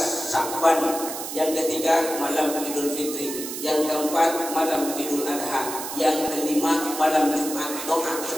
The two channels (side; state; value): right; noise; hiss, 7 dB below the sound